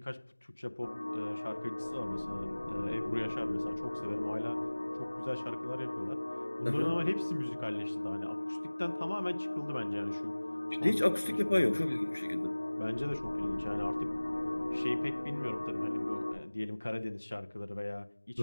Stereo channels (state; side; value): inverted; both; correlation -1.00